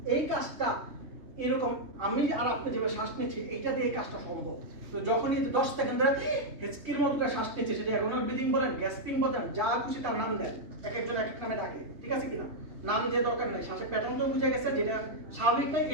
এই কাজটা এরকম আমি আর আপনি যেভাবে শ্বাস নিচ্ছি, এইটা দিয়ে এই কাজটা সম্ভব। তো যখনই 10 সেকেন্ড ধরে হেঁচকির মতো করে শ্বাস নিচ্ছে, সেটা অ্যাগোনাল ব্রিদিং বলেন, গ্যাসপিং বলেন, যা খুশি তার নাম দেন, এক একজন এক এক নামে ডাকে, ঠিক আছে কিনা? নাম দিয়ে দরকার নেই, শ্বাসের প্যাটার্ন তো বুঝে গেছে, যেটা স্বাভাবিক নাই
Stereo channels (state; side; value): late; left; 3.3 ms